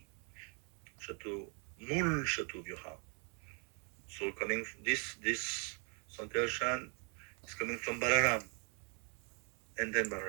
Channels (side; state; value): left; quieter; 38.5 dB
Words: Shatu, Mul Shatu Vyuha. So coming this Sankarshan is coming from Balaram, and then